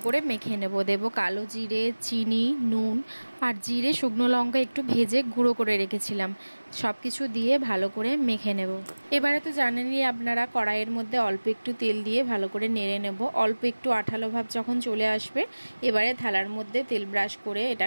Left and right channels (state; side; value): inverted; both; correlation -1.00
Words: করে মেখে নেব। দেবো কালো জিরে, চিনি, নুন আর জিরে, শুকনো লঙ্কা একটু ভেজে গুঁড়ো করে রেখেছিলাম। সব কিছু দিয়ে ভালো করে মেখে নেব। এবারে তো জানেনই আপনারা, কড়াইয়ের মধ্যে অল্প একটু তেল দিয়ে ভালো করে নেড়ে নেব। অল্প একটু আঠালো ভাব যখন চলে আসবে, এবারে থালার মধ্যে তেল ব্রাশ করে